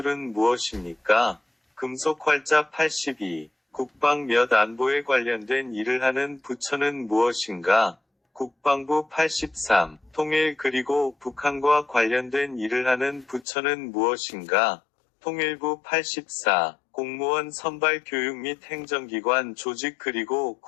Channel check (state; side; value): drops out; right; at 13.5 s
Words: 무엇입니까? 금속 활자 82. 국방 및 안보에 관련된 일을 하는 부처는 무엇인가? 국방부 83. 통일 그리고 북한과 관련된 일을 하는 부처는 무엇인가? 통일부 84. 공무원 선발 교육 및 행정기관 조직 그리고